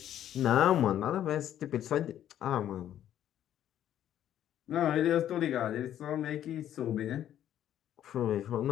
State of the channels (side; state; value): right; quieter; 11.2 dB